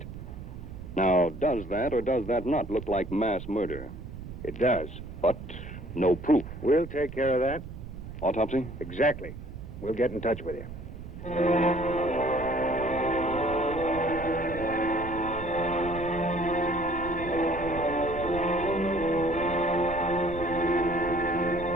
Now, does that or does that not look like mass murder? It does. But no proof. We'll take care of that. Autopsy? Exactly. We'll get in touch with you.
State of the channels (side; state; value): right; noise; rumble, 11 dB below the sound